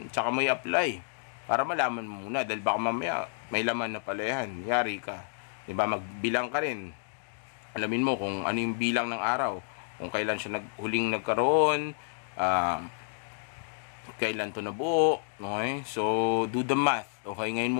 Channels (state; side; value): silent; right; digital silence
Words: tsaka mo i-apply para malaman mo muna, dahil baka mamaya may laman na pala yan, yari ka, diba? Magbilang ka rin, alamin mo kung ano yung bilang ng araw, kung kailan siya huling nagkaroon, kailan to nabuo, okay? So do the math, okay? Ngayon